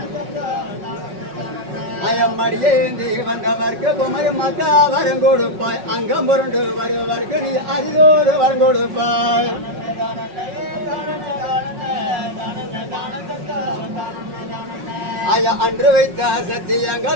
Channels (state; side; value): late; left; 5.4 ms